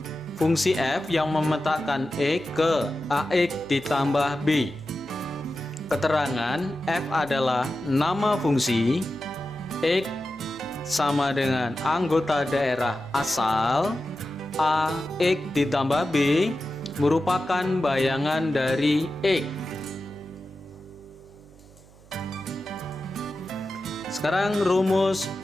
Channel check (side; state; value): right; noise; hum, 24 dB below the sound